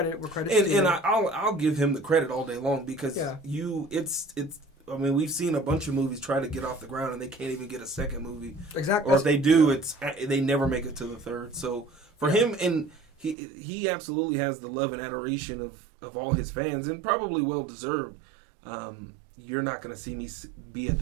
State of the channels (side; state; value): left; drops out; at 13.4 s